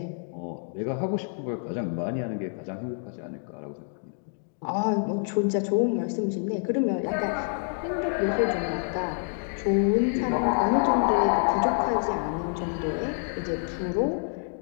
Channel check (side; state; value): right; silent; 60 dB below the other